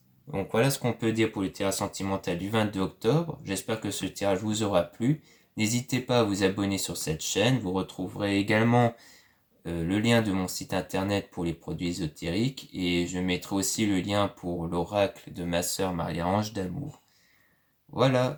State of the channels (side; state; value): both; identical; correlation 1.00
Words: Donc voilà ce qu'on peut dire pour le tirage sentimental du 22 octobre. J'espère que ce tirage vous aura plu. N'hésitez pas à vous abonner sur cette chaîne. Vous retrouverez également le lien de mon site internet pour les produits ésotériques. Et je mettrai aussi le lien pour l'oracle de ma sœur Marie-Ange d'Amour. Voilà,